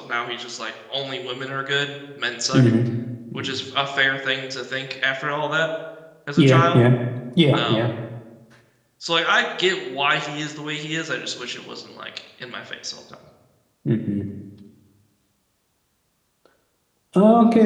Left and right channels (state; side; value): identical; both; correlation 1.00